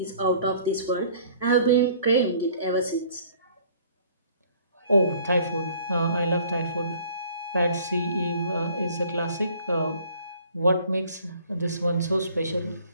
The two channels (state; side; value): inverted; both; correlation -0.55